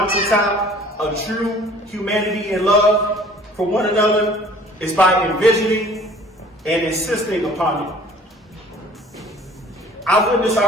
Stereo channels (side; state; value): both; normal; correlation 0.51